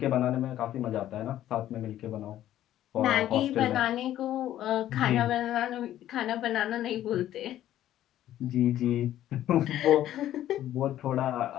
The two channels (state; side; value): quieter; right; 12.6 dB